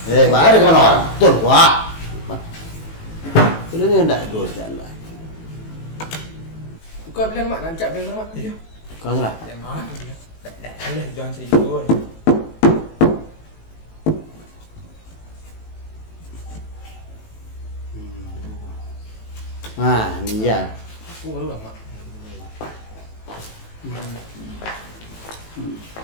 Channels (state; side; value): late; right; 18 ms